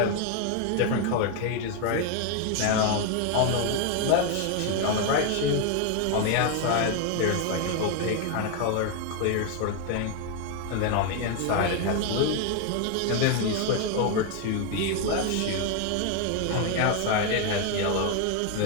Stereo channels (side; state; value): both; different; correlation 0.01